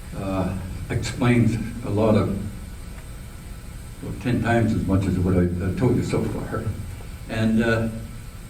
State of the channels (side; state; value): both; identical; correlation 1.00